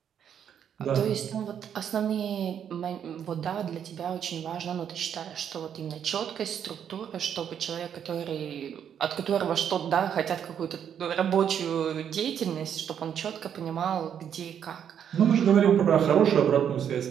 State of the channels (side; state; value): left; quieter; 8.7 dB